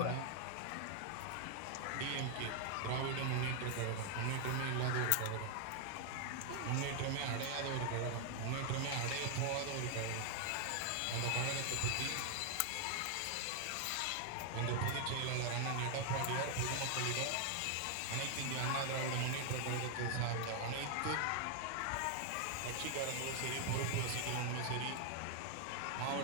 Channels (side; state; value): both; different; correlation 0.00